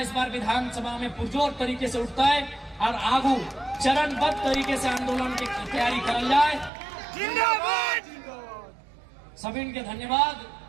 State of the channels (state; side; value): drops out; left; at 6.7 s